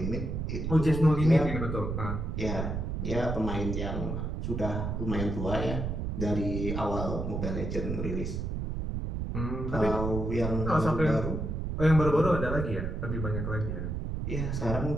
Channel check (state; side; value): noise; right; rumble, 3 dB below the sound